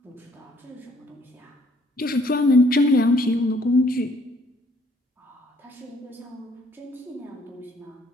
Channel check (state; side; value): normal; both; correlation 0.63